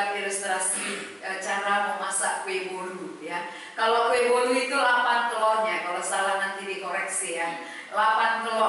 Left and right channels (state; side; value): identical; both; correlation 1.00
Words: ilustrasi cara memasak kue bolu ya. Kalau kue bolu itu 8 telurnya, kalau salah nanti dikoreksi ya. 8